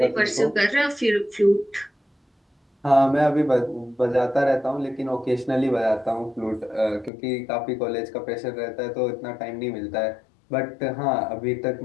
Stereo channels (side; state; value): right; drops out; at 7.1 s